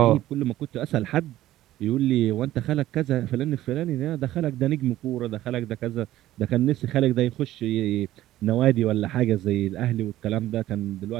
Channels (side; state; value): left; quieter; 14.5 dB